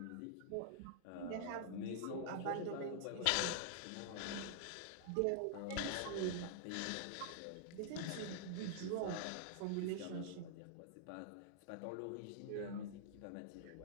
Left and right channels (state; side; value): different; both; correlation -0.01